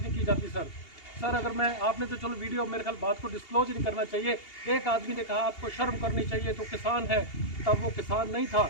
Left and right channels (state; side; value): late; right; 2.8 ms